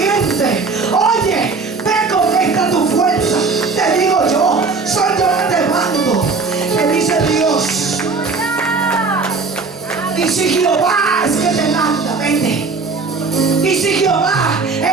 Oye, ve con esta tu fuerza. Te digo yo, soy yo que te mando, te dice Dios. Y si Jehová es que te manda, vete. Y si Jehová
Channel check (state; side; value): quieter; left; 4.3 dB